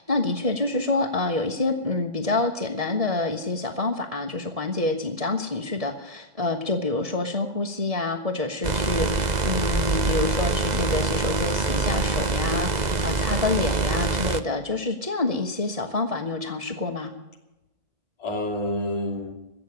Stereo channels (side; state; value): left; late; 2.0 ms